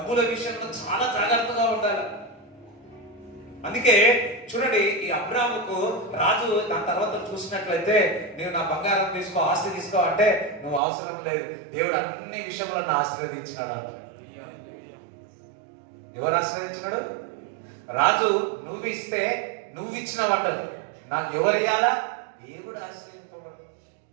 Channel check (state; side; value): drops out; left; at 10.8 s